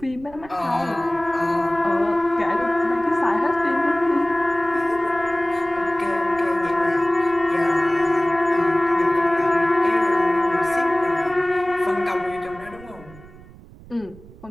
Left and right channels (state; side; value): noise; right; rumble, 21 dB below the sound